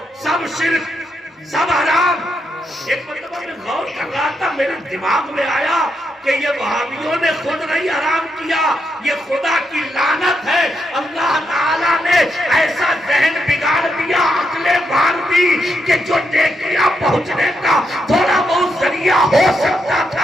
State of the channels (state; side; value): normal; both; correlation 0.81